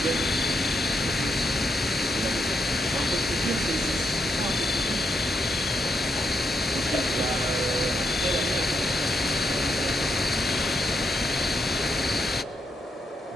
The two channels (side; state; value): both; normal; correlation 0.81